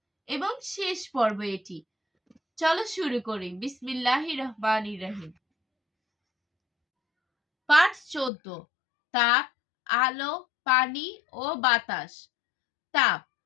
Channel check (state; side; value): drops out; right; at 8.3 s